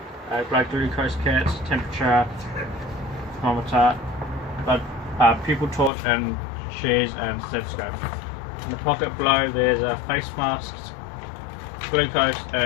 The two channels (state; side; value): drops out; right; at 5.9 s